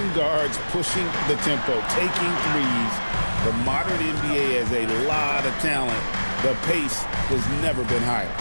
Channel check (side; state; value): both; inverted; correlation -1.00